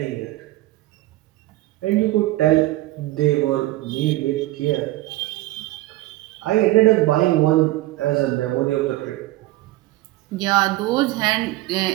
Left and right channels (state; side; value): quieter; left; 17.7 dB